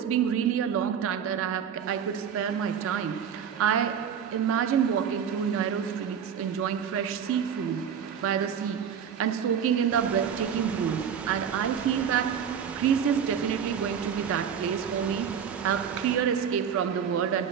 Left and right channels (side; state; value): left; quieter; 7.9 dB